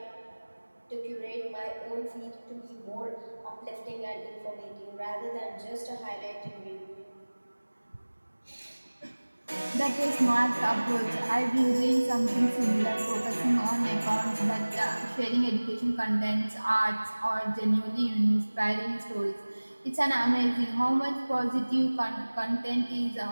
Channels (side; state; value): both; inverted; correlation -1.00